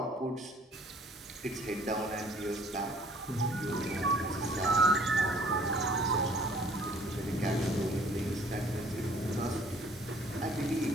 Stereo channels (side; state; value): both; normal; correlation 0.57